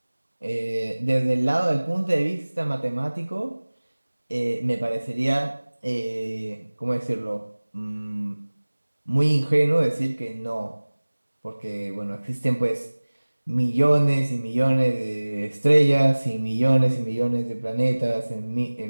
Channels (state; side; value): inverted; both; correlation -1.00